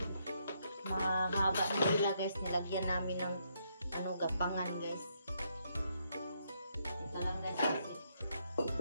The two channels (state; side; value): inverted; both; correlation -0.75